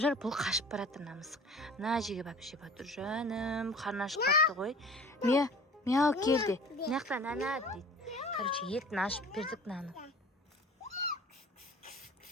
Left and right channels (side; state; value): both; normal; correlation 0.43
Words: жүр, бұл қашып баратыр мына мысық. Мына жерге барып жеп жатыр. Жаным, қарны ашып қалыпты ғой. Мяу келді. Мынаяқта нана дейді. Короче, етін ашып бердік наны.